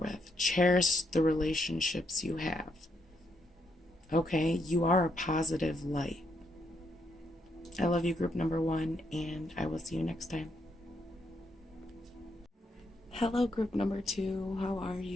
Cherish the relationships you have. Okay? You are a positive light. I love you, group number 1, and I will see you next time. Hello, group number 2. How are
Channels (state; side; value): normal; both; correlation 0.77